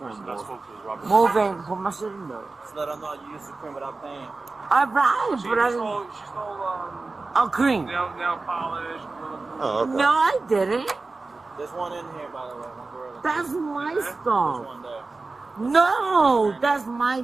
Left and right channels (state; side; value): quieter; left; 3.6 dB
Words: Move in, put my shit in there. Just let her know you used the cream without paying. Alright, but I didn't. She stole A cream. nail polish. Oh, okay. No, I didn't. There's one in here, by the way. One gorilla. That's my There's stuff. one there. No, that's my